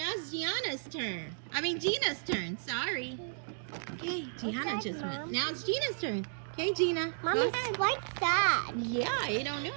it's Gianna's turn. I mean Gina's turn, sorry. Okay, Gianna What's that, just went. Mom? Now it's Gina's turn. Okay, Gina. Mommy, press- white side. Yeah, I don't know.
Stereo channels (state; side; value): silent; left; digital silence